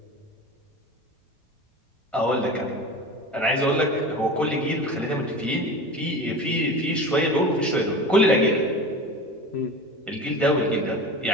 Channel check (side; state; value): both; normal; correlation 0.32